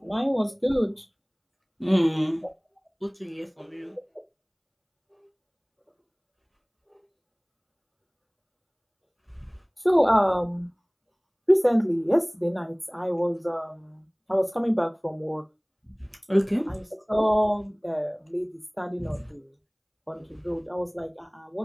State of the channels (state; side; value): identical; both; correlation 1.00